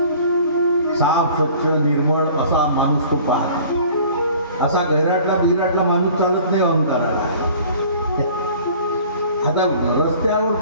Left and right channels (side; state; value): both; inverted; correlation -0.49